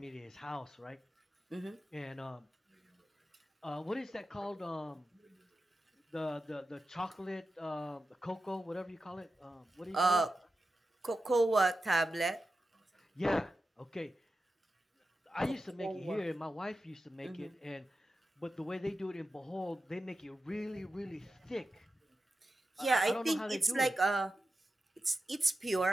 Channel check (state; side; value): normal; both; correlation 0.92